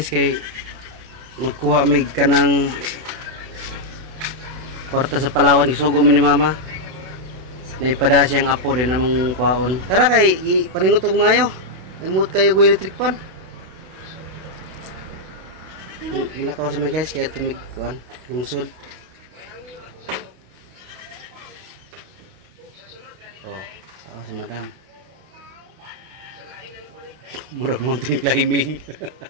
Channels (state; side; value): late; left; 32 ms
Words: kay magkuha mig kanang kwarta sa Palawan, isugo mi ni mama. Naipada siyang apo din namang kwaon. Tara kay paningot og mayo. Namut kayo go electric pan. Mula ka sa mga guys kaya tumig kuan lungsod. Oh, ako sa madam. Murag mountain climbing.